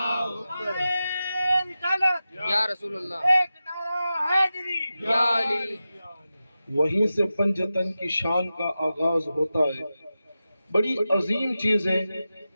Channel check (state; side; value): inverted; both; correlation -0.93